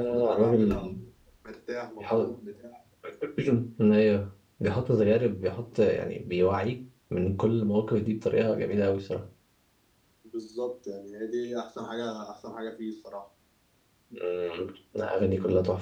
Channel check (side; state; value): both; identical; correlation 1.00